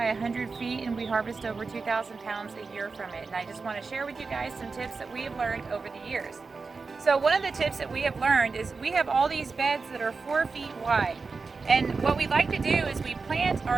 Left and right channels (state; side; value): quieter; left; 4.4 dB